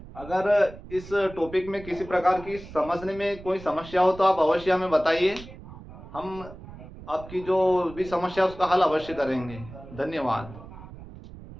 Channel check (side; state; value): right; noise; rumble, 16 dB below the sound